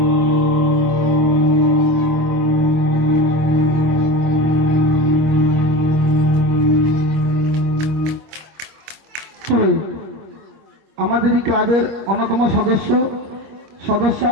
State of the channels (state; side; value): late; left; 25 ms